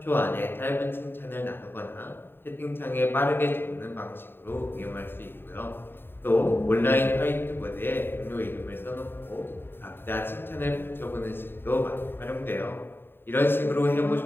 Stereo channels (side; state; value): right; late; 0.10 ms